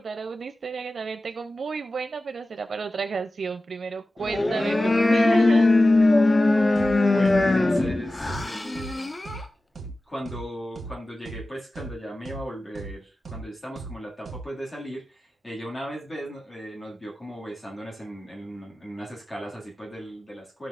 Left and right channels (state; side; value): normal; both; correlation 0.95